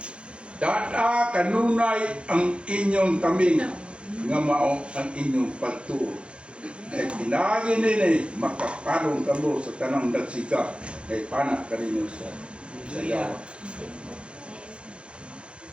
Dada kanunay ang inyong taming nga mao ang inyong pagtuo. Kay pinagi nini makaparong kamo sa tanang dagsika kay panak kaninyo sa yawa.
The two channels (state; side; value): late; left; 0.058 ms